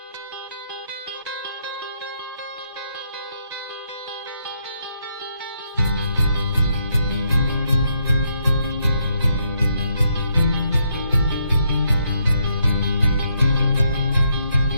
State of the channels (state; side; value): inverted; both; correlation -0.76